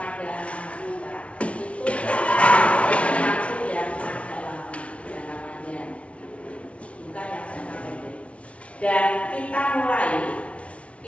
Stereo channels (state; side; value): late; right; 0.062 ms